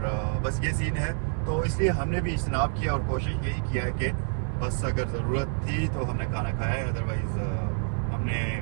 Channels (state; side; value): silent; left; 60 dB below the other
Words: बस ये सीन है, तो इसलिए हमने भी इज्तनाब किया और कोशिश यही किया है कि बस अगर ज़रूरत थी तो हमने खाना खाया है, अदरवाइज़ हमने